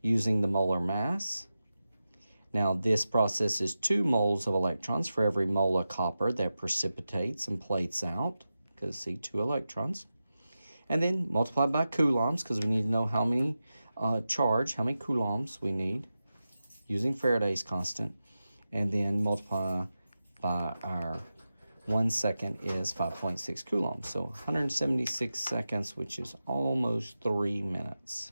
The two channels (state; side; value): inverted; both; correlation -0.92